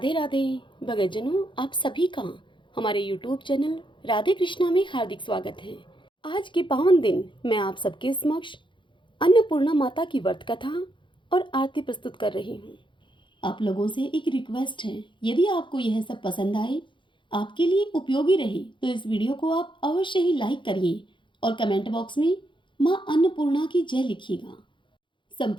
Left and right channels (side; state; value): right; late; 0.23 ms